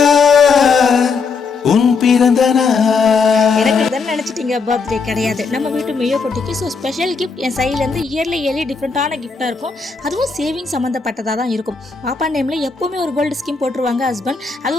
எனக்கு இதுன்னு நினச்சிட்டீங்க, பர்த்டே கிடையாது, நம்ம வீட்டு மியோ குட்டிக்கு. ஸோ ஸ்பெஷல் கிஃப்ட் என் சைட்லேருந்து இயர்லி டிஃப்ரெண்ட்டான கிஃப்ட்டாக இருக்கும். அதுவும் சேவிங் சம்மந்தப்பட்டதாக தான் இருக்கும். பாப்பா நேமில் எப்போவுமே ஒரு கோல்டு ஸ்கீம் போட்டுருவாங்க ஹஸ்பண்ட். அது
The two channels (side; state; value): right; quieter; 4.9 dB